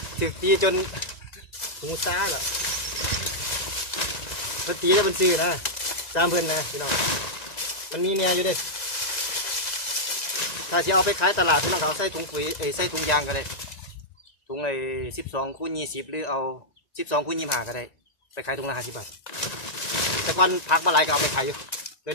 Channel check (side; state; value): right; late; 1.9 ms